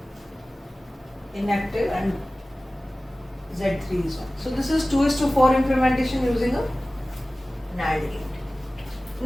inactive and Z3 is 1. So this is 2:4 implementation using a NAND gate.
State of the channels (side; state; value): both; normal; correlation 0.97